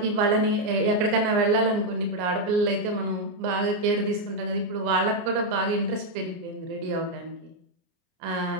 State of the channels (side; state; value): left; late; 29 ms